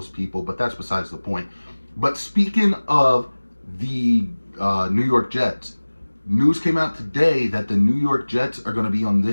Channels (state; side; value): inverted; both; correlation -1.00